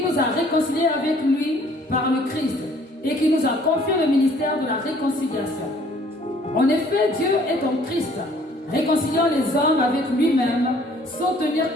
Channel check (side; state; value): both; normal; correlation 0.58